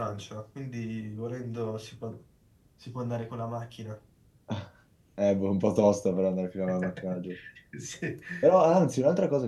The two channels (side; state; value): both; identical; correlation 1.00